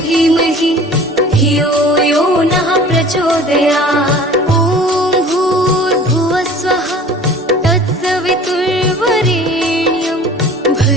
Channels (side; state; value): both; normal; correlation 0.45